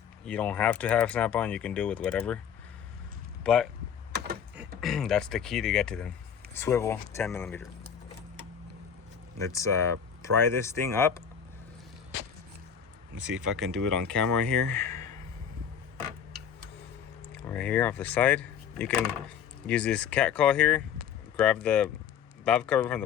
You don't have to have snap-on. You can do it with whatever. But that's the key to get to them. Swivel, 10 millimeter. Let's pry this thing up. Let's see if I can do it on camera here. Right here off the side. You can use this cat call here. Grab the valve cover from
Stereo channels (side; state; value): right; quieter; 8.1 dB